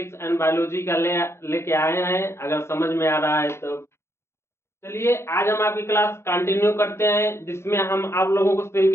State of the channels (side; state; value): right; late; 0.13 ms